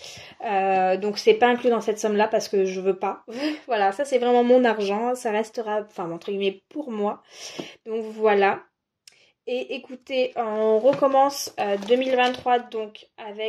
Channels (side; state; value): both; identical; correlation 1.00